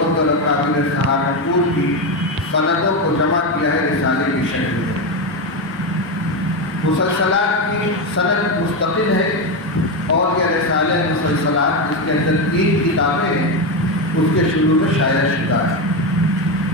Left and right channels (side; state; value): both; normal; correlation 0.12